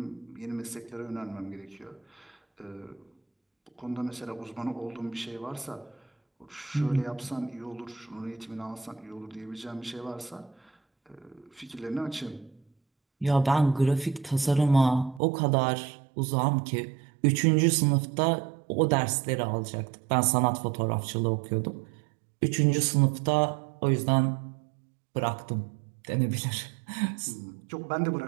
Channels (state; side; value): drops out; left; at 15.2 s